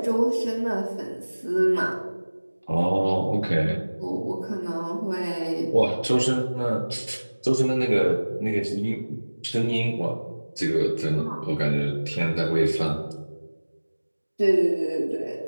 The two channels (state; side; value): inverted; both; correlation -1.00